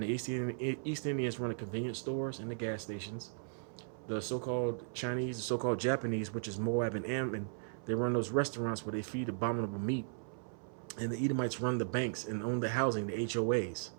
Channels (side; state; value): left; silent; 53 dB below the other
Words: the East Indians run the convenience stores and the gas stations. The so-called Chinese, the so-called Japanese, which is Moab and Ammon, they run those restaurants where they feed abominable meat. And the Edomites run the banks and own the housing, the HOAs.